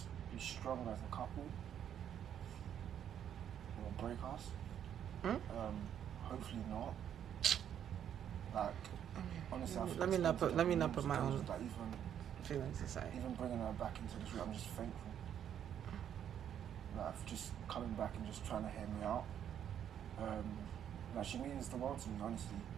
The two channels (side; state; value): left; quieter; 9.5 dB